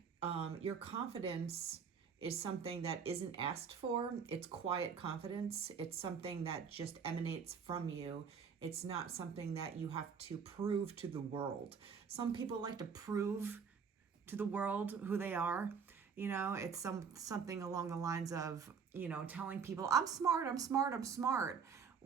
Your confidence is something that isn't asked for. It's quiet confidence. It's something that just emanates from you. It's not something that you have to prove to the world. Some people like to prove to the world who they are. You know, it's something along the lines of, you know, telling people, I'm smart, I'm smart, I'm smart,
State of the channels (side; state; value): left; quieter; 6.3 dB